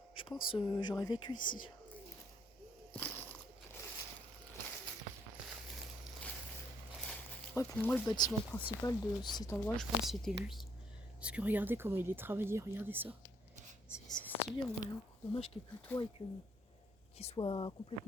je pense j'aurais vécu ici. Ouais, pour moi, le bâtiment principal de cet endroit, je pense que c'était lui. Parce que regardez comment il est travaillé, regardez ça. C'est stylé en vrai. Hein. Dommage qu'il n'y ait plus de toit et qu'il soit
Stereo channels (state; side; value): normal; both; correlation 0.68